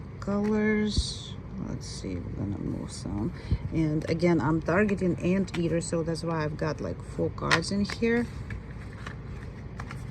colors. Let's see, we're gonna move some. And again, I'm targeting anteater, so that's why I've got like 4 cards in here.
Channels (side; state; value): both; identical; correlation 1.00